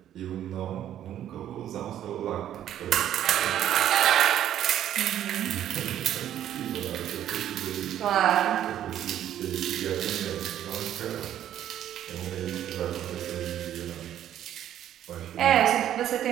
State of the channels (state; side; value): quieter; left; 11.2 dB